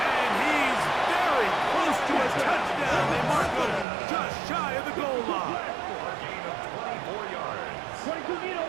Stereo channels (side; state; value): left; drops out; at 3.9 s